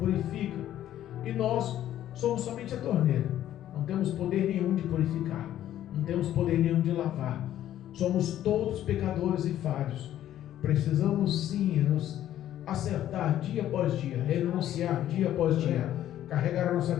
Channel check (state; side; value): quieter; right; 12.1 dB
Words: E nós somos somente a torneira. Não temos poder nenhum de purificar. Não temos poder nenhum de lavar. Somos todos pecadores e falhos. Precisamos sim nos acertar dia após dia, renunciar dia após dia, carregar a nossa